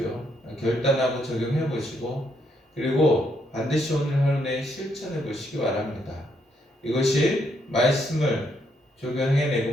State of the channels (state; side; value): normal; both; correlation 0.75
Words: 결단하고 적용해 보시고 그리고 반드시 오늘 하루 내에 실천해 보시기 바랍니다. 이것이 말씀을 적용해내고